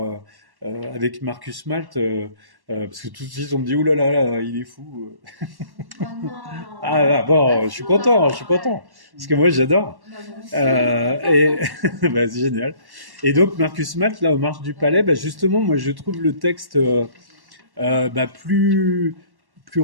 avec Marcus Malt, parce que tout de suite, on me dit, ouh là là, il est fou. Oh non, Ah là, bon, pas je suis fou content, je suis alors, content, ouais. parce que moi, j'adore. Bah, moi aussi. Et bah, c'est génial. Et donc, Marcus Malt, là, aux Marches du Palais, bah, justement, moi, je trouve le texte bah, plus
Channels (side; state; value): left; late; 1.1 ms